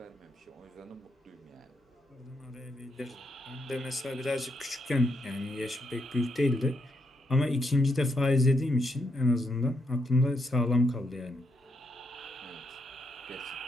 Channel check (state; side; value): normal; both; correlation 0.79